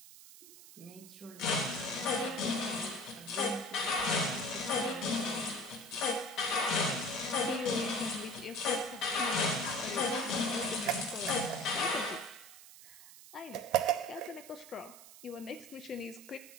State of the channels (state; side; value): noise; right; hiss, 18 dB below the sound